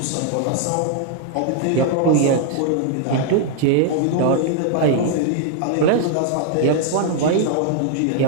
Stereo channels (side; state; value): both; different; correlation 0.00